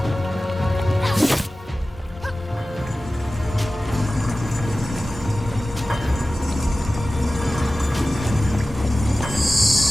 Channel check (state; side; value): normal; both; correlation 0.96